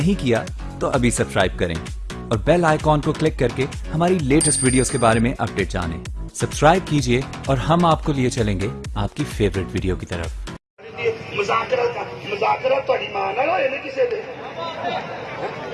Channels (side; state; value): both; identical; correlation 1.00